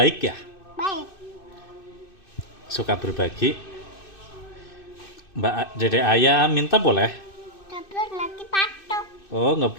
ya, Baik. suka berbagi. Mbak Dede Ayah minta boleh? Tapi nanti patok. Oh, nggak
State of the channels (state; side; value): late; right; 2.6 ms